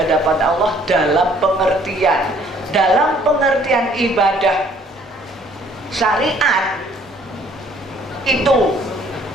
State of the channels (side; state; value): both; normal; correlation 0.60